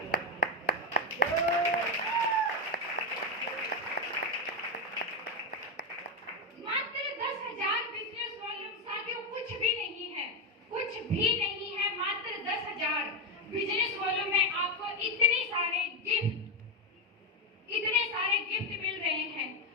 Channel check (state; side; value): normal; both; correlation 0.06